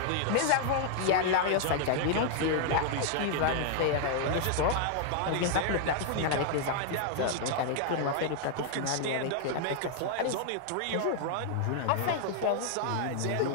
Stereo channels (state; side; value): different; both; correlation 0.00